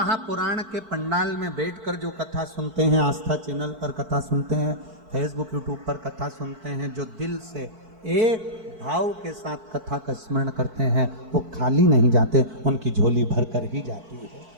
के पंडाल में बैठकर जो कथा सुनते हैं, आस्था चैनल पर कथा सुनते हैं, फेसबुक यूट्यूब पर कथा सुनते हैं, जो दिल से एक भाव के साथ कथा का स्मरण करते हैं वो खाली नहीं जाते, उनकी झोली भर कर ही जाती है।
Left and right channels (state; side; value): late; left; 4.5 ms